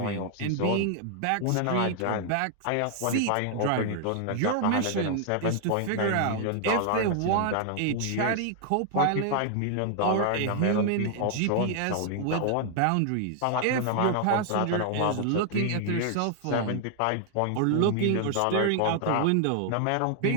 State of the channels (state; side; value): different; both; correlation 0.00